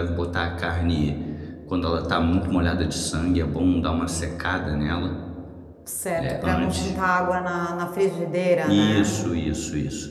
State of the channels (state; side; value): identical; both; correlation 1.00